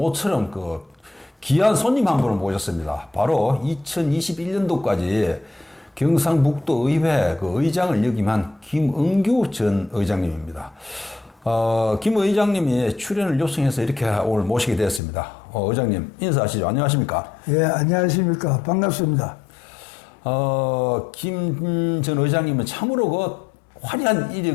귀한 손님 한 분을 모셨습니다. 바로 2021년도까지 경상북도 의회 의장을 역임한 김은규 전 의장님입니다. 김 의장님이 출연을 요청해서 이렇게 오늘 모시게 되었습니다. 의장님 인사하시죠. 안녕하십니까? 예, 안녕하십니까. 반갑습니다. 김 전 의장님은 참으로 화려한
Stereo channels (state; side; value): drops out; right; at 15.0 s